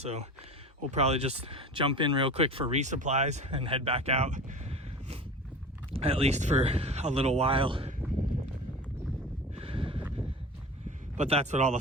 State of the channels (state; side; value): normal; both; correlation 0.35